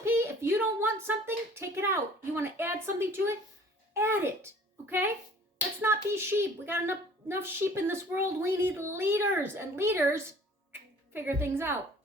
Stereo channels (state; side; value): normal; both; correlation 0.51